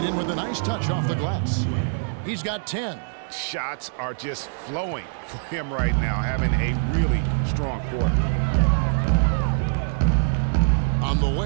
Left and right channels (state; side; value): silent; left; digital silence